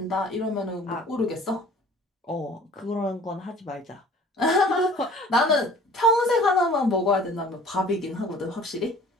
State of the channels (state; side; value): normal; both; correlation 0.49